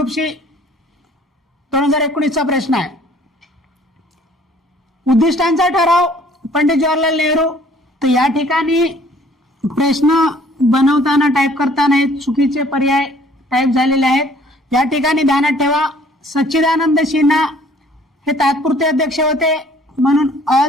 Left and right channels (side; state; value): both; normal; correlation 0.56